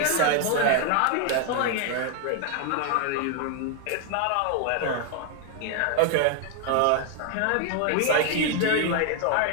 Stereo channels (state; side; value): different; both; correlation 0.00